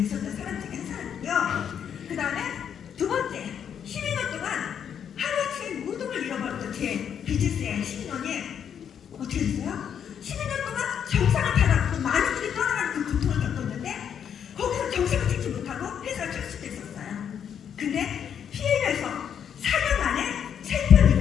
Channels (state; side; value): quieter; right; 8.4 dB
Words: 사람 중에 한 사람이고요. 그 다음에 두 번째, 12년 동안 하루아침에 모든 걸 잃어버렸던 제 비즈니스의 12년이 어떻게 됐어요? 12년 동안 정상을 타락하고 많은 분이 떠나가는 그 고통을 겪었는데 거기서 정상을 찍지 못하고 회사를 철수됐었어요. 근데 PM에서 4년 만에 챔피언